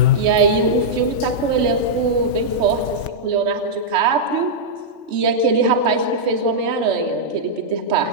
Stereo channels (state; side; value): late; left; 3.4 ms